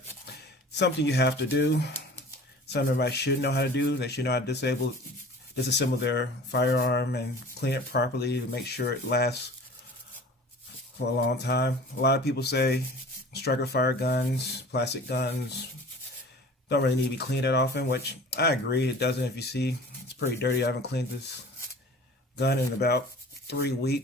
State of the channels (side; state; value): both; normal; correlation 0.43